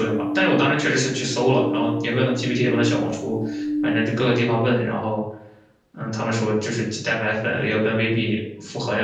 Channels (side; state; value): both; identical; correlation 1.00